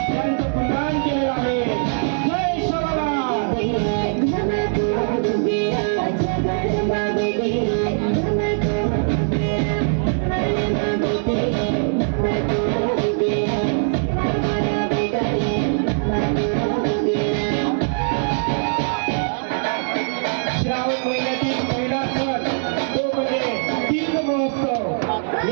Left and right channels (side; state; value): left; silent; 65 dB below the other